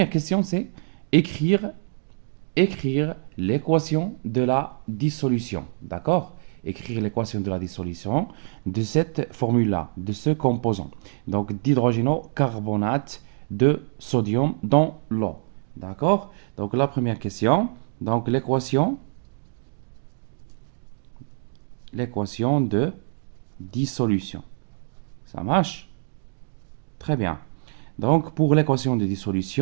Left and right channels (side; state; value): left; silent; digital silence